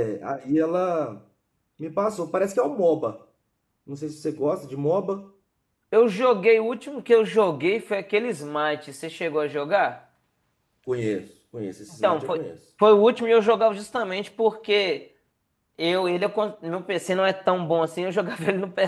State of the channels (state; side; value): identical; both; correlation 1.00